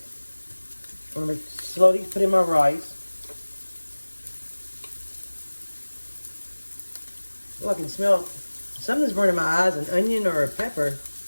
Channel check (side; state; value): both; inverted; correlation -1.00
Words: I'm going to slowly put in my rice. Oh, I can smell something's burning my eyes, an onion or a pepper.